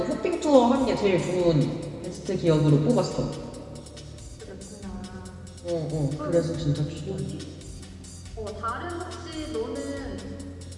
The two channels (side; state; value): both; identical; correlation 1.00